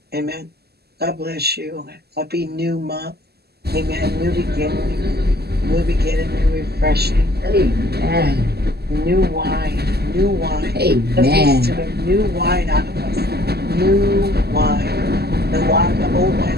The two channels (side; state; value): left; late; 0.46 ms